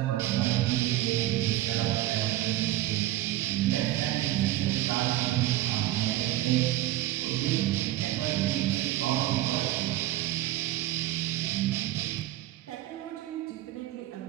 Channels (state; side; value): quieter; left; 15.2 dB